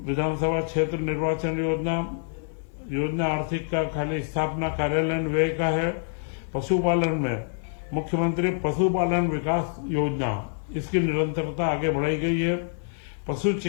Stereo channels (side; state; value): right; silent; 61 dB below the other